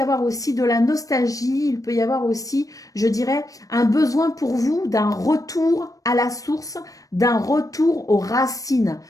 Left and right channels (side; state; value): right; late; 0.17 ms